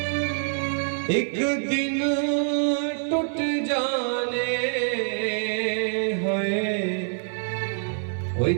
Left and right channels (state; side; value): silent; left; 57 dB below the other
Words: एक दिन टूट जाने होए ओए